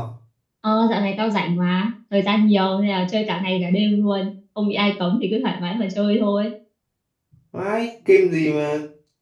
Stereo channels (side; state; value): both; identical; correlation 1.00